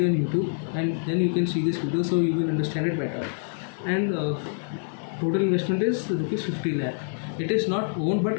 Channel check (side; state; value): right; silent; digital silence